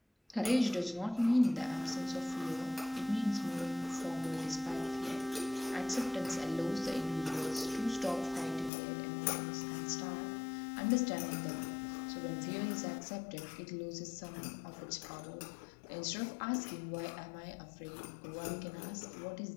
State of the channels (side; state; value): right; drops out; at 8.7 s